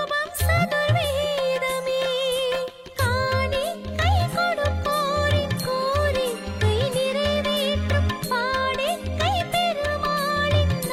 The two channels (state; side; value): identical; both; correlation 1.00